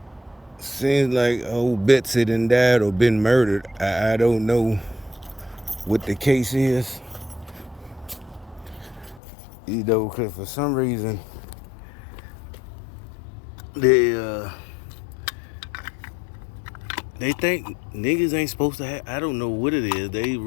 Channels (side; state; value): right; drops out; at 9.2 s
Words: seems like old Betsy done died or been murdered. I don't know what the case is, because for some reason they they think niggas ain't supposed to have. I don't know what it is. They